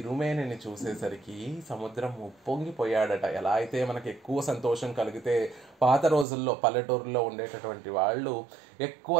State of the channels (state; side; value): drops out; left; at 6.2 s